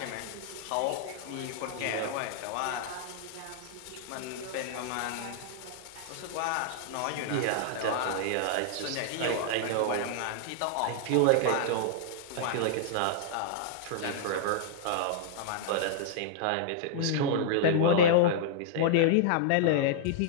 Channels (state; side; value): different; both; correlation -0.01